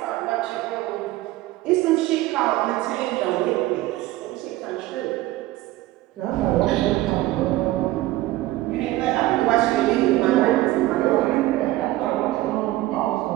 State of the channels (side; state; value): left; quieter; 17.0 dB